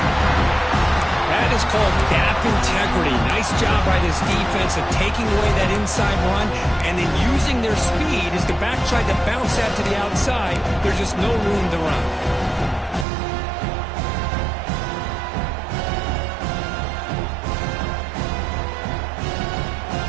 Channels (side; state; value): left; drops out; at 13.1 s